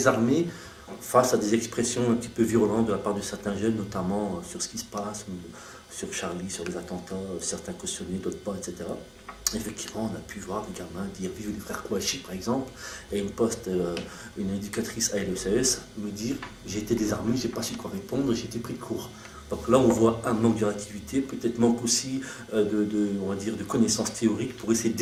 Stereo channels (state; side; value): identical; both; correlation 1.00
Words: face à des expressions un petit peu virulentes de la part de certains jeunes, notamment sur ce qui se passe, sur Charlie, sur les attentats, certains cautionnés, d'autres pas, etc. Effectivement, on a pu voir des gamins dire « Vive les frères Kouachi » par exemple, et une éducatrice à LECS me dire « J'ai été désarmé, j'ai pas su quoi répondre, j'ai été pris de court ». Donc là, on voit un manque de réactivité, peut-être manque aussi de connaissances théoriques pour essayer de